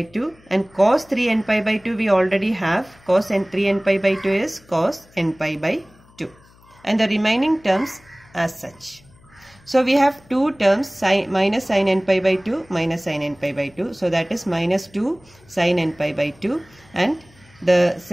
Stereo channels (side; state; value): left; noise; hum, 28 dB below the sound